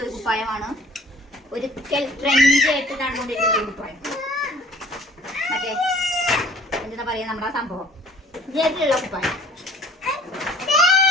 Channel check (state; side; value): normal; both; correlation 0.52